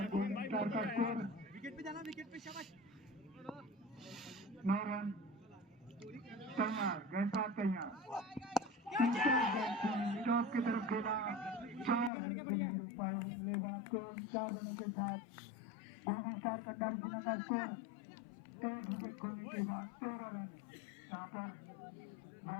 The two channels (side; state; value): right; drops out; at 12.1 s